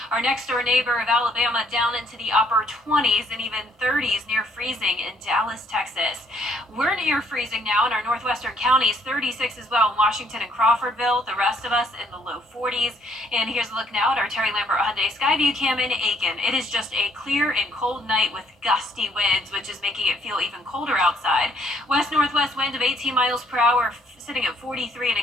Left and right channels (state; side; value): normal; both; correlation 0.66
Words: Our next door neighbor of Alabama down into the upper 20s and even 30s near freezing in Dallas, Texas. We're near freezing now in our northwestern counties, 36 as well in Washington and Crawfordville. The rest of us in the low 40s. And here's a look now at our Terry Lambert Hyundai Skyview cam in Aiken. It is just a clear and cold night with gusty winds, which is making it feel even colder outside. West-northwest wind of 18 miles per hour, sitting at 43 in